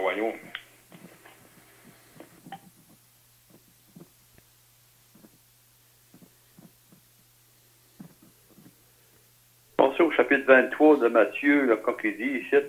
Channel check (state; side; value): identical; both; correlation 1.00